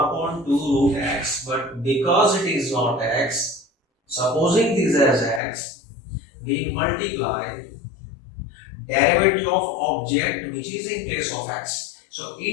2 root x. But because it is not x, supposing this as x, we multiply derivative of object which is in place of x. So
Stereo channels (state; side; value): drops out; right; at 5.4 s